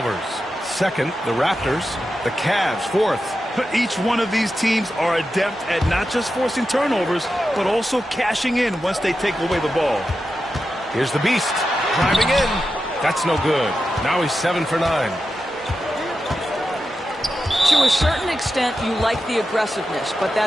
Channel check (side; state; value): both; normal; correlation 0.90